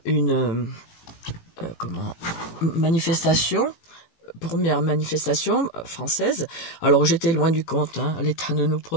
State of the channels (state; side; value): late; right; 18 ms